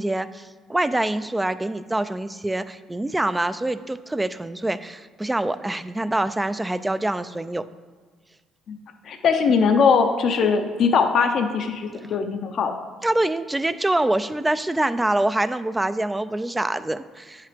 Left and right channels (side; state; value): both; normal; correlation 0.81